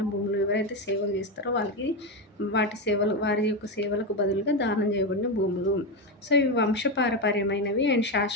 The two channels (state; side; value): normal; both; correlation 0.12